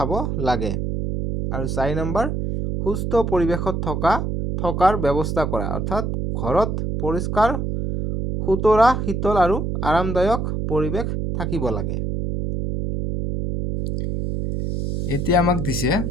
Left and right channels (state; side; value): noise; right; hum, 2 dB below the sound